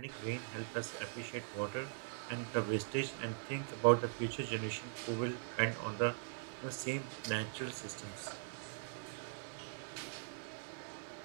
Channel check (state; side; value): silent; left; 50 dB below the other